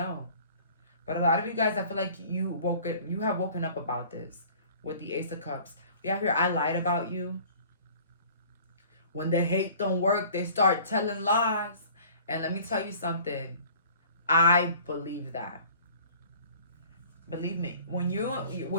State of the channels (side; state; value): both; inverted; correlation -0.48